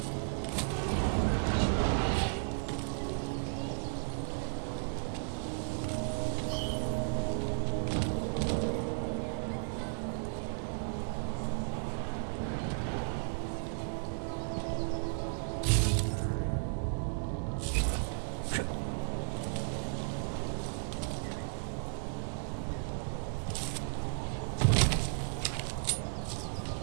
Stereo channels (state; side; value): silent; left; digital silence